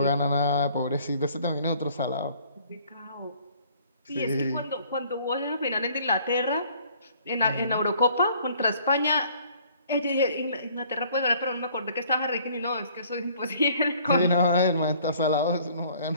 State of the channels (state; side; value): inverted; both; correlation -0.57